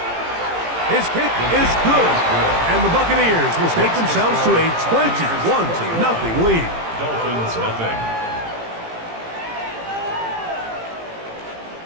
kick is good, and the Buccaneers will stake themselves to a 21-0 lead. Dolphins nothing.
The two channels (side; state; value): left; late; 18 ms